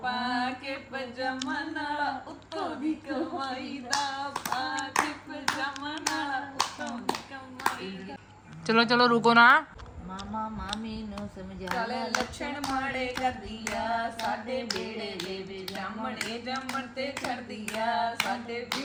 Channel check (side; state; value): both; identical; correlation 1.00